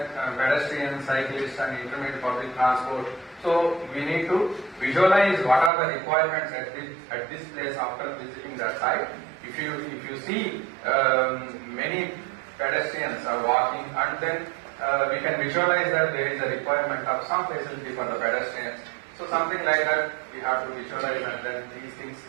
pedestrians, cyclists and intermediate public transport. So we need to visualize what are the requirements at this place after visiting that site. If you see many pedestrians are walking, and then we can visualize that there is a requirement of some facility for the pedestrians. So something like that we have to visualize, and then these things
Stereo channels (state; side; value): drops out; left; at 5.7 s